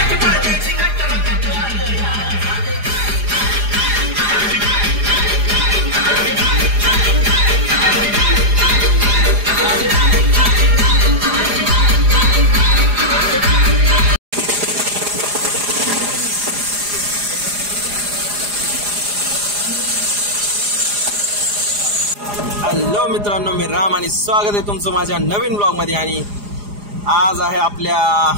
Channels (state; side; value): late; left; 4.9 ms